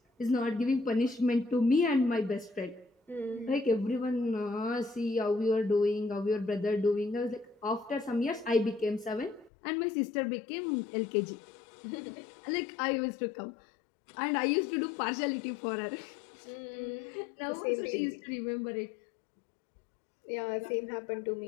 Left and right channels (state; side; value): drops out; right; at 9.5 s